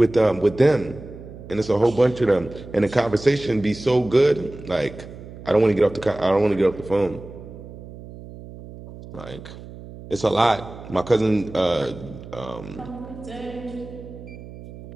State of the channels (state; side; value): noise; right; hum, 15 dB below the sound